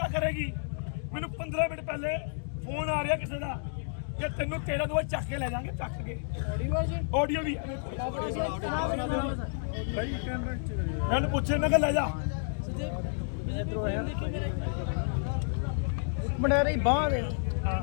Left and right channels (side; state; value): right; silent; digital silence